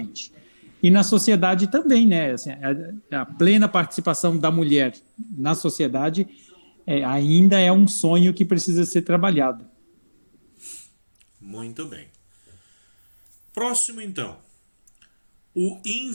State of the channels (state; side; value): inverted; both; correlation -1.00